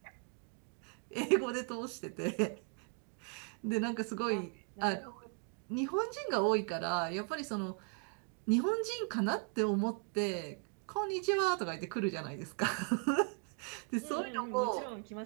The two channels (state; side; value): quieter; left; 36.7 dB